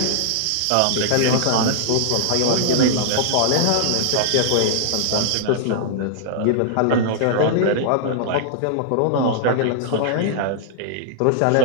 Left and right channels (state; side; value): different; both; correlation -0.01